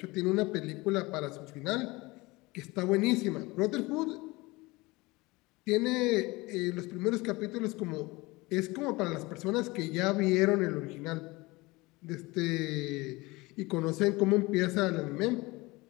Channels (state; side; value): quieter; right; 22.6 dB